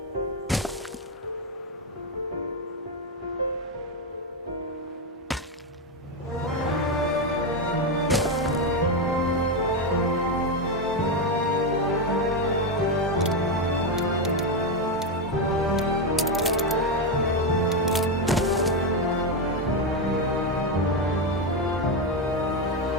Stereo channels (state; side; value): normal; both; correlation 0.08